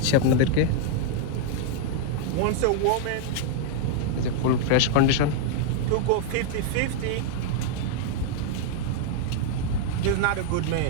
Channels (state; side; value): different; both; correlation -0.01